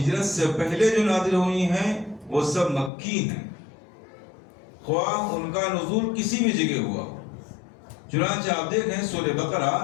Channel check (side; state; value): right; drops out; at 2.9 s